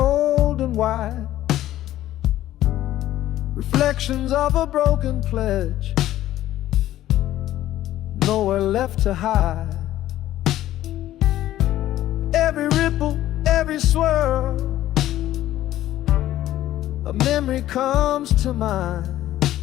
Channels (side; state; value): right; quieter; 13.7 dB